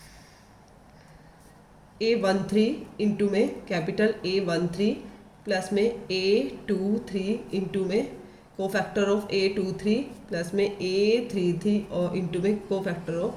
A13 इंटू में कैपिटल A13 प्लस में A23 इंटू में कोफैक्टर ऑफ A23 प्लस में A33 और इंटू में कोफैक्टर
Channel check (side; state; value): both; identical; correlation 1.00